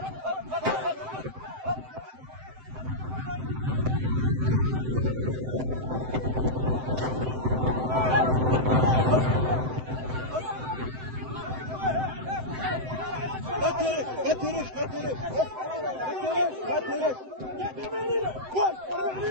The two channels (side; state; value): left; late; 7.8 ms